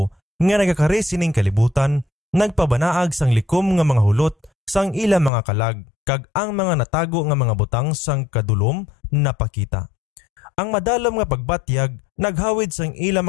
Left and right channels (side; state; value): right; drops out; at 5.3 s